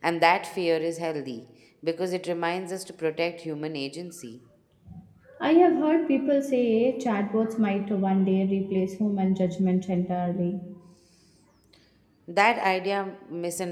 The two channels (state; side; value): identical; both; correlation 1.00